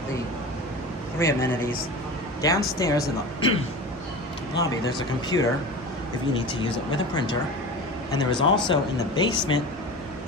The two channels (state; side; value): normal; both; correlation 0.32